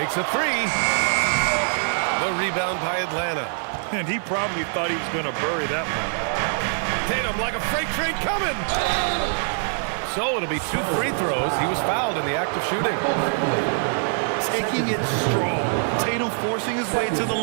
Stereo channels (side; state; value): left; silent; digital silence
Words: a 3. The rebound by Atlanta. And he probably thought he was going to bury that one. Tatum like a freight train coming. So it'll be 2 free throws. He was fouled in the act of shooting. Taking it strong. Tatum forcing his way to the